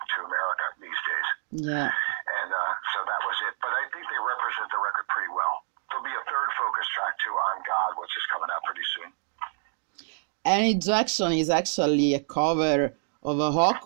America these days. Yeah. And so that was it. But I think they represent the record pretty well. There'll be a third focus track too, On God, which is coming out pretty soon. And Ejection is actually a cover of a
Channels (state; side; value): silent; left; digital silence